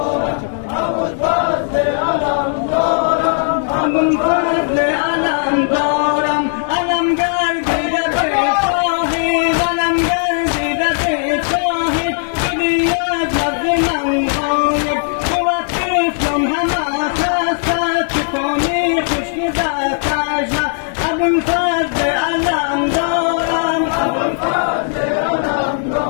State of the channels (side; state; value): right; silent; 63 dB below the other